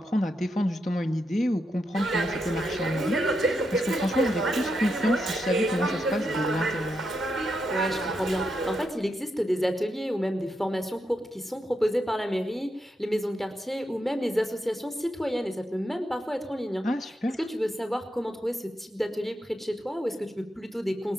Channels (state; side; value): normal; both; correlation 0.83